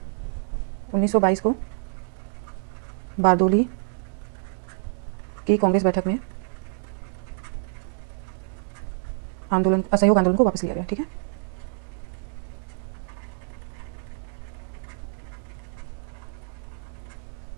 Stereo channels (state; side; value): silent; left; digital silence